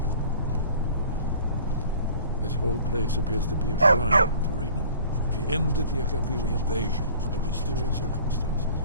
This whole place appears to be a shrine to Riemann. He ended the Akaviri invasion under mysterious circumstances.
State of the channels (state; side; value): inverted; both; correlation -0.49